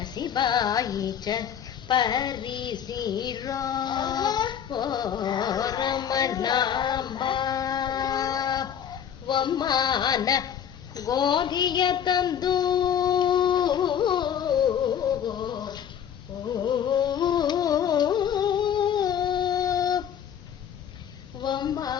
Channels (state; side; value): quieter; right; 8.9 dB